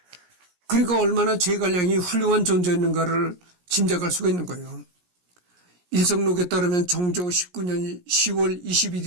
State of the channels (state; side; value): late; left; 17 ms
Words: 그러니까 얼마나 제갈량이 훌륭한 존재였는가를 짐작할 수가 있는 거예요. 일성록에 따르면 정조 19년 10월